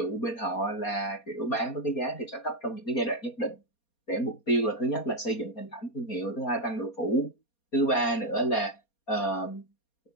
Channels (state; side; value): late; right; 4.3 ms